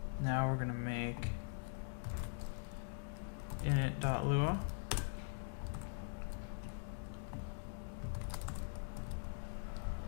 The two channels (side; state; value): right; silent; digital silence